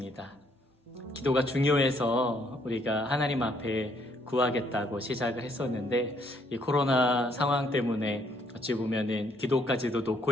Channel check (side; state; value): both; normal; correlation 0.68